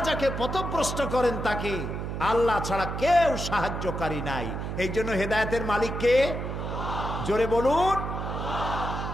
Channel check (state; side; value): noise; right; hum, 4 dB below the sound